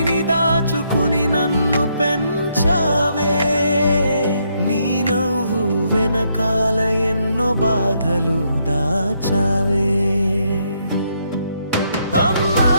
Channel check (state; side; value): inverted; both; correlation -0.75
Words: దాచుకుని నన్ను పెంచావే, నీ నవ్వు వెనకాల ఎన్నో బాధలు దాచావే. అమ్మా